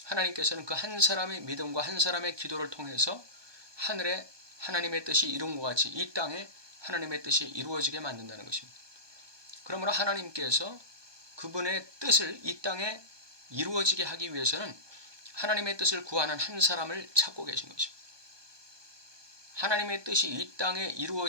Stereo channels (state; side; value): late; left; 1.2 ms